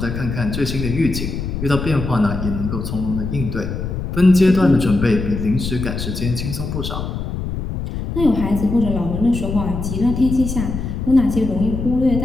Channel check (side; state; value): left; noise; rumble, 5 dB below the sound